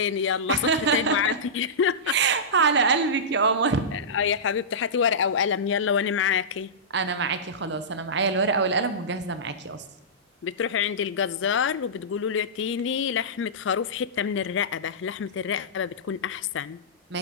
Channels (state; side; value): normal; both; correlation -0.17